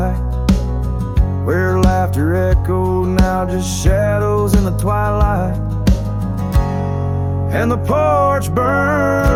where laughter echoed, now just shadows in the twilight. And the porch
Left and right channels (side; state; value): both; identical; correlation 1.00